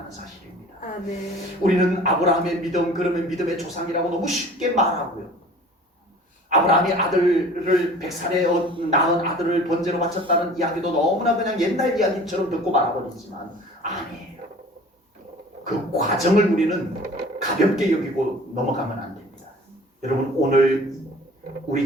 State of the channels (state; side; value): normal; both; correlation 0.46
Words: 사실입니다. 아멘. 우리는 아브라함의 믿음, 그러면 믿음의 조상이라고 너무 쉽게 말하고요. 아브라함이 아들을 100살에 낳은 아들을 번제로 바쳤다는 이야기도 너무나 그냥 옛날 이야기처럼 듣고 말아버리지만 아니에요. 그 과정을 우리는 가볍게 여기고 넘어가면 안 됩니다. 여러분, 오늘 우리